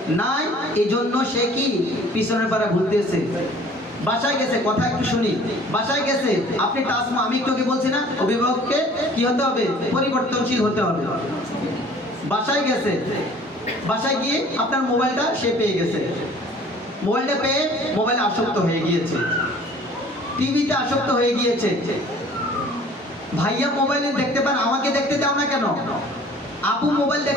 নাই, এজন্য সে কি পিছনের পাড়া ঘুরতেছে, বাসায় গেছে, কথা একটু শুনি, বাসায় গেছে, আপনি টাসমা, আমি একটু বলছি না, অভিভাবককে কি হতে হবে? পরিবর্তনশীল হতে হবে। বাসায় গেছে, বাসায় গিয়ে আপনার মোবাইলটা সে পেয়ে গেছে, মোবাইলটা পেয়ে মোবাইলে আসক্ত হয়ে গিয়েছে, টিভিতে আসক্ত হয়ে গিয়েছে। ভাইয়া মোবাইলে দেখতে পান, আমাকে দেখতে দাও না কেন? আপু মোবাইল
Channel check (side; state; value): both; normal; correlation 0.51